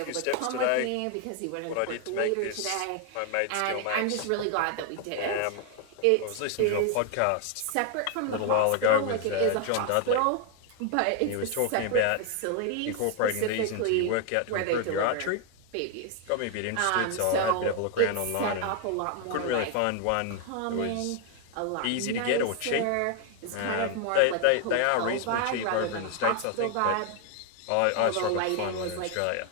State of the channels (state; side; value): different; both; correlation 0.00